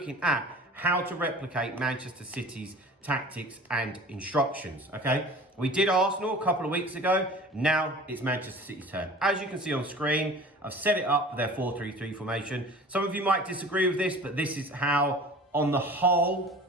at how to replicate Manchester City's tactics and instructions, okay? We did Arsenal a couple of weeks ago. Now it's Manchester City's turn. As you can see on screen, I've set it up with their 4-3-3 formation. Some of you might disagree with this, but this is how, on the whole,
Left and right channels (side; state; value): both; normal; correlation 0.42